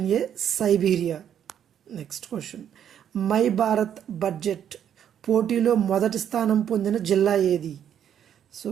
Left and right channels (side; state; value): left; quieter; 9.4 dB